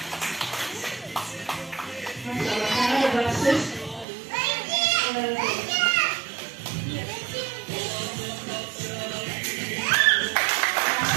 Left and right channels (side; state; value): left; drops out; at 4.0 s